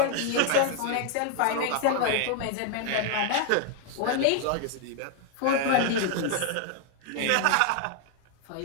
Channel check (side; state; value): both; different; correlation 0.00